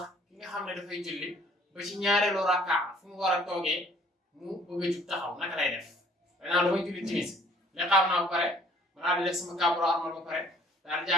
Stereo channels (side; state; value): both; normal; correlation 0.57